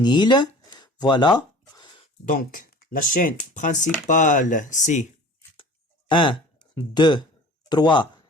Voilà. Donc, la chaîne principale, c'est 1, 2, 3,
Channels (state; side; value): normal; both; correlation 0.43